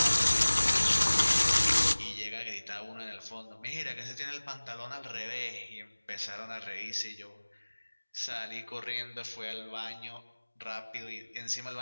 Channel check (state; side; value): inverted; both; correlation -1.00